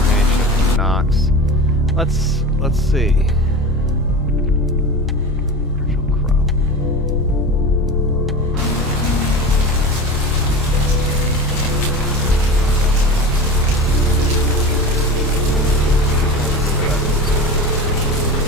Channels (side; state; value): both; normal; correlation 0.30